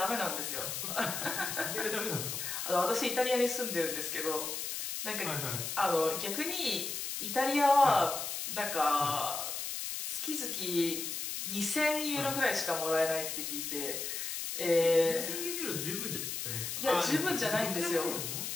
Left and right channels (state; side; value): noise; left; hiss, 4 dB below the sound